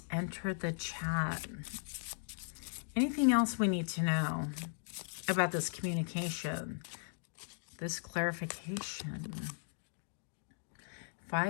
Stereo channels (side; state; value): right; silent; digital silence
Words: entered the chat. Anything else we need to know about this communication, this clarification?